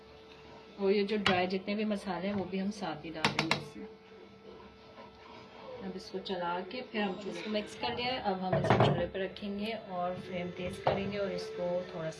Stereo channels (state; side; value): identical; both; correlation 1.00